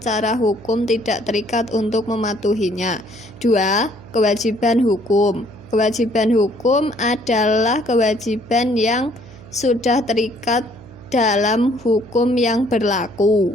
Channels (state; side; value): noise; right; hum, 20 dB below the sound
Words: hukum tidak terikat untuk mematuhinya. 2. Kewajiban hukum. Kewajiban hukum adalah kewajiban yang sudah terikat dalam hukum yang